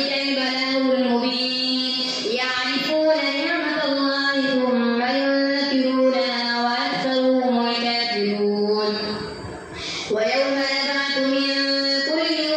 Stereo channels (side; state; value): both; identical; correlation 1.00